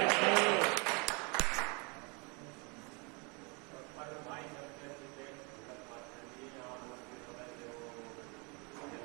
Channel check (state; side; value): quieter; left; 31.5 dB